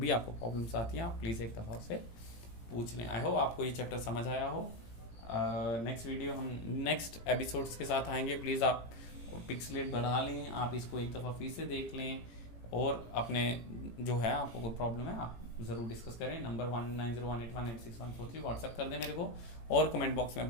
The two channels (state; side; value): late; right; 17 ms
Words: आपको प्रॉब्लम्स आती हैं आप प्लीज़ एक दफ़ा से पूछ लें। आई होप आपको ये चैप्टर समझ आया हो। नेक्स्ट वीडियो हम नेक्स्ट एपिसोड्स के साथ आएंगे। प्लीज़ आप पिक्सलेट बढ़ा लें, आप इसको एक दफ़ा फिर से देख लें और अपने जो है आपको कोई प्रॉब्लम है आप ज़रूर डिस्कस करें। नंबर 190181864143 व्हाट्सएप कर दें मेरे को, और कमेंट बॉक्स में